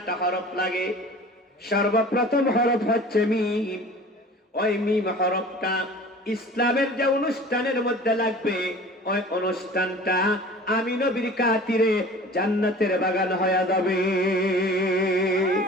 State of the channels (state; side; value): normal; both; correlation 0.43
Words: হরফ লাগে। সর্বপ্রথম হরফ হচ্ছে মিম। ওই মিম হরফটা ইসলামের যে অনুষ্ঠানের মধ্যে লাগবে, ওই অনুষ্ঠানটা আমি নবীর খাতিরে জান্নাতের বাগান হয়ে যাবে।